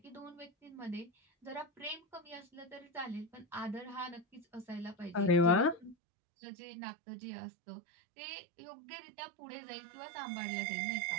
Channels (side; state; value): left; drops out; at 6.0 s